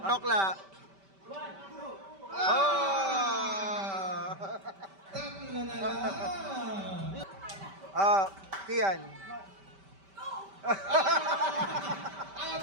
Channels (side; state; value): left; late; 5.1 ms